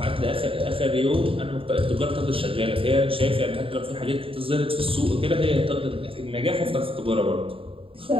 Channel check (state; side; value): late; left; 0.26 ms